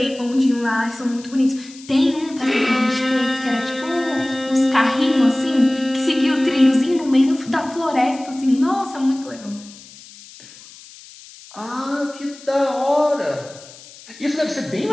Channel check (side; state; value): left; noise; hiss, 20 dB below the sound